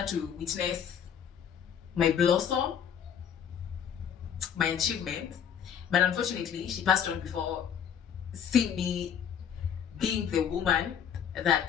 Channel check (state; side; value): quieter; right; 8.3 dB